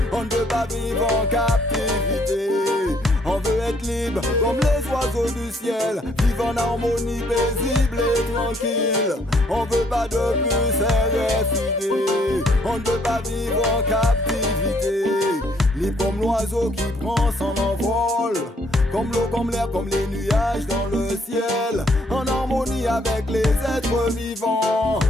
On ne veut pas vivre en captivité. On veut être libre comme les oiseaux du ciel, vivre en harmonie paisible et tranquille. On veut pas de plus RFID. On ne veut pas vivre en captivité. Libre comme l'oiseau qui prend son envol, comme l'eau, comme l'air, comme les nuages dans le ciel, en harmonie avec les êtres vivants,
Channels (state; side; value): normal; both; correlation 0.67